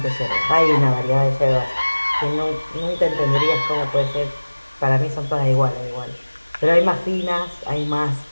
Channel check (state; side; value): inverted; both; correlation -1.00